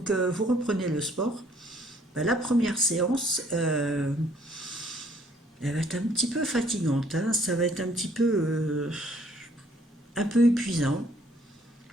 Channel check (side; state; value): both; normal; correlation 0.62